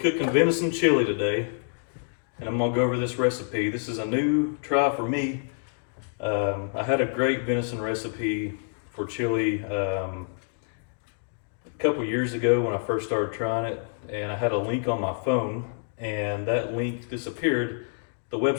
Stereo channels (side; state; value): right; silent; digital silence